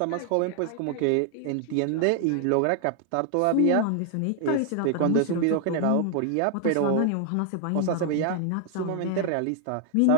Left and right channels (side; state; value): both; different; correlation 0.00